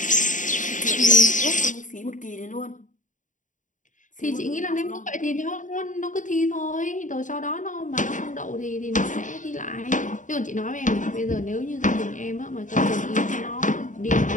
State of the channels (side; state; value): right; late; 0.37 ms